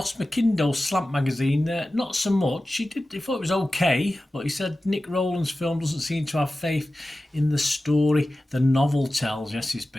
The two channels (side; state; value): both; normal; correlation 0.95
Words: McIndoe, Slant Magazine, not so much. He thought it was okay, but he said Nick Rowland's film doesn't seem to have faith in the story the novel tells. Yes, it's